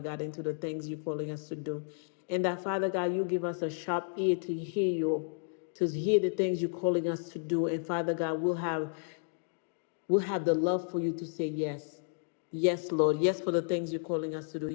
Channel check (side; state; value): right; silent; digital silence